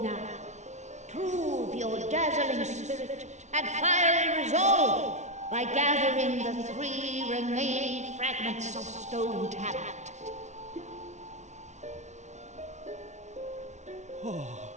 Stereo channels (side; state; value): left; late; 0.33 ms